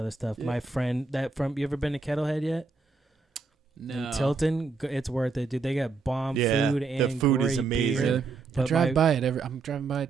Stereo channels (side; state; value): left; quieter; 4.3 dB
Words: stuff. Yeah. My friend you ever been to Kettlehead yet? No. In Tilton, it's worth it, dude. They got bomb food and the food great is amazing. beer. I But drive by it I'm driving by it